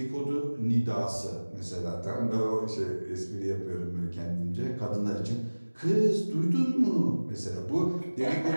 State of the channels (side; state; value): both; inverted; correlation -1.00